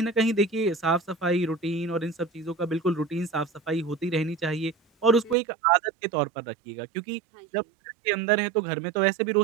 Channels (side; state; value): left; drops out; at 5.4 s